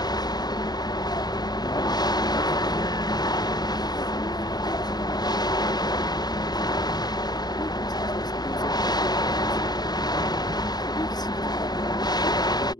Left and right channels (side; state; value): right; late; 0.20 ms